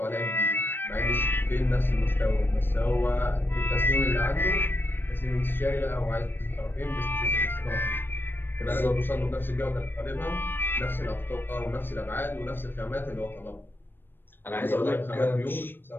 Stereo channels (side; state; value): right; late; 0.097 ms